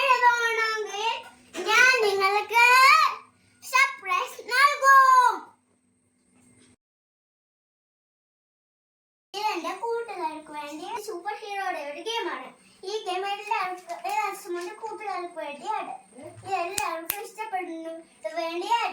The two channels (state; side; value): identical; both; correlation 1.00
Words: ഞാൻ നിങ്ങൾക്ക് സർപ്രൈസ് നൽകും. ഇതെന്റെ കൂട്ടുകാർക്ക് വേണ്ടി സൂപ്പർ ഹീറോയുടെ ഒരു ഗെയിമാണ്. ഈ ഗെയിം എല്ലാവർക്കും കൂട്ടുകാർക്ക് വേണ്ടിയാണ്. എല്ലാവർക്കും ഇഷ്ടപ്പെടുന്നു വേണ്ടി